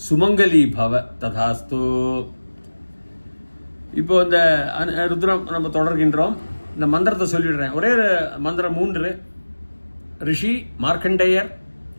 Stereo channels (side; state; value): both; inverted; correlation -1.00